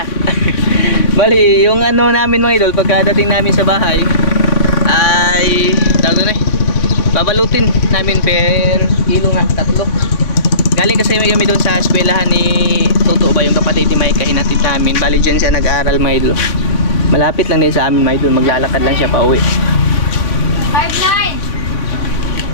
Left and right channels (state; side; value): late; right; 3.6 ms